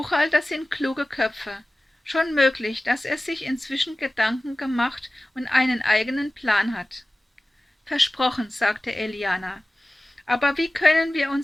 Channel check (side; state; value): both; normal; correlation 0.97